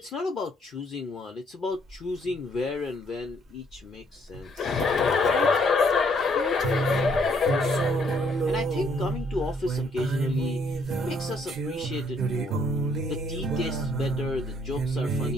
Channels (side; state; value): both; normal; correlation 0.67